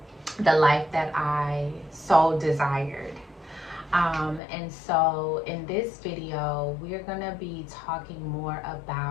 the life that I so desired? And so in this video, we're gonna be talking more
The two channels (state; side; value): drops out; right; at 4.4 s